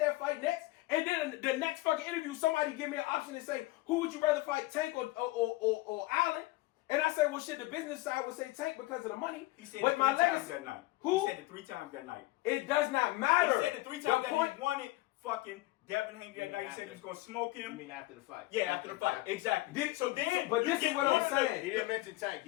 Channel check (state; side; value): quieter; right; 19.3 dB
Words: fight next. And then the next fucking interview, somebody give me an option and say, who would you rather fight, Tank or Allen? And I say, well, shit, the business side would say Tank because of the money. He said but it 3 my times legacy, that night. Who? He said it 3 times that night. It does not matter. He said it 3 times The that point- he wanted fucking Devin Haney that mean night. He said he was going to smoke You him. mean after the fight? Yeah, after the fight. Exactly. But this is what I'm saying. He didn't mention Tank.